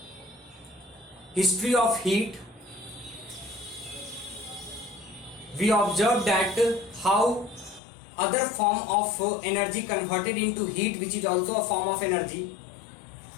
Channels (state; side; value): drops out; right; at 7.8 s